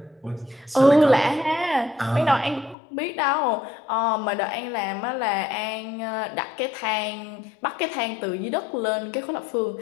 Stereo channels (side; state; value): right; drops out; at 2.8 s